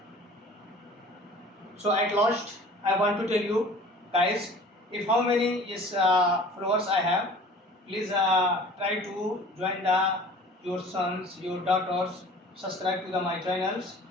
So at last, I want to tell you guys, if how many followers I have, please try to join your sons, your daughters, subscribe to my channels,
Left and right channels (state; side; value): normal; both; correlation 0.45